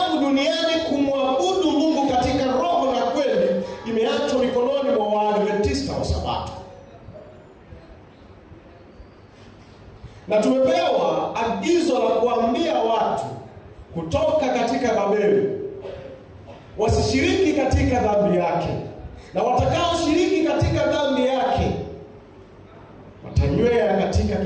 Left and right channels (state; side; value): identical; both; correlation 1.00